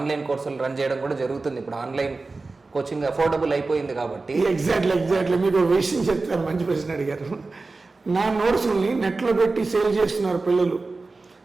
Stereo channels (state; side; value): quieter; left; 3.7 dB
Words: కోర్సులు రన్ చేయడం కూడా జరుగుతుంది. ఇప్పుడు ఆన్లైన్ కోచింగ్ అఫోర్డబుల్ అయిపోయింది కాబట్టి. ఎగ్జాక్ట్లీ మీకు ఒక విషయం చెప్తాను, మంచి ప్రశ్న అడిగారు. నా నోట్స్ని నెట్లో పెట్టి సేల్ చేస్తున్నారు పిల్లలు.